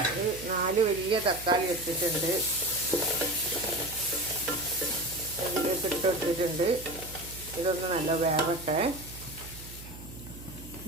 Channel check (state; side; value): noise; right; hum, 15 dB below the sound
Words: ഒരു 4 വലിയ തക്കാളി എടുത്തിട്ടുണ്ട്. അതിലേക്ക് ഇട്ട് കൊടുത്തിട്ടുണ്ട്. ഇതൊന്ന് നല്ല വേവട്ടെ.